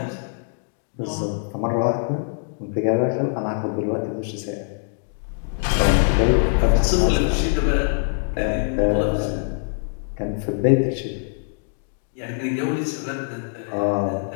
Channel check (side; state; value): right; silent; digital silence